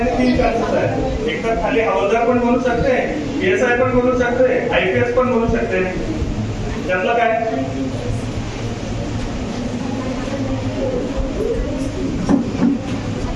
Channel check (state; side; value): identical; both; correlation 1.00